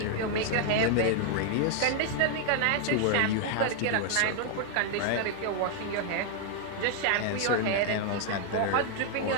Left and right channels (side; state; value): both; different; correlation 0.00